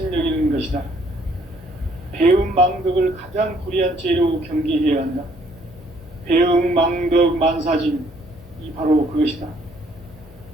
것이다. 배음 망덕을 가장 불의한 죄로 경계해야 한다. 배음 망덕 만사진, 이 바로 그것이다.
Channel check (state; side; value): normal; both; correlation 0.64